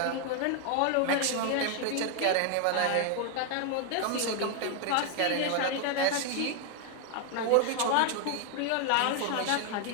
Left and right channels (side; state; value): both; different; correlation 0.01